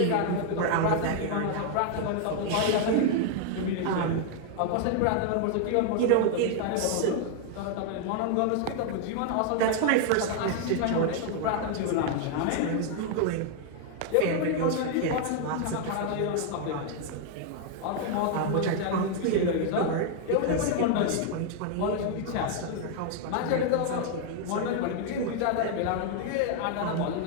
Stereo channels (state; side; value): different; both; correlation 0.00